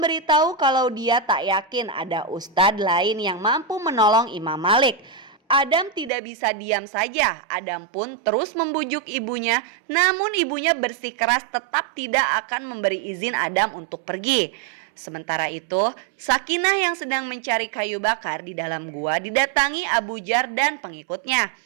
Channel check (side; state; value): left; drops out; at 6.1 s